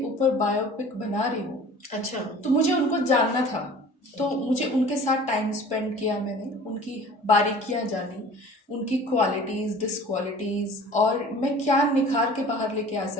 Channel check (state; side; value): normal; both; correlation 0.45